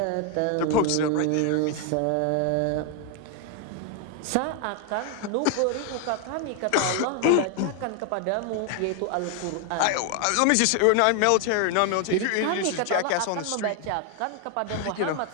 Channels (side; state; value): both; different; correlation 0.00